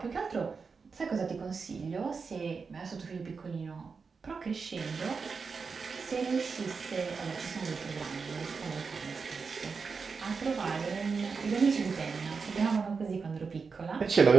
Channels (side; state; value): left; quieter; 5.1 dB